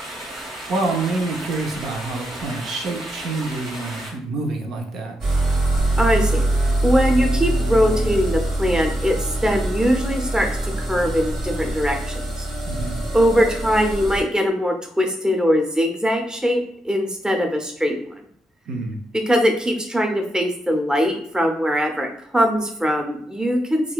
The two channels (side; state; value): both; normal; correlation 0.84